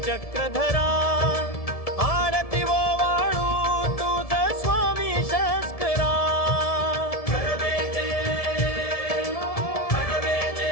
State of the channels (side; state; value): right; late; 1.7 ms